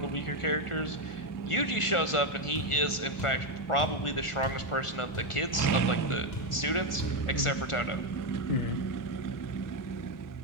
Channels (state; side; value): late; right; 1.4 ms